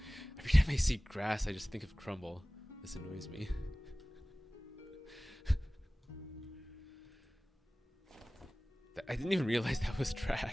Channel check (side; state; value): both; normal; correlation 0.98